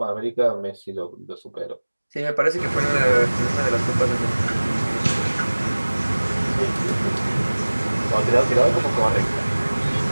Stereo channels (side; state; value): both; inverted; correlation -1.00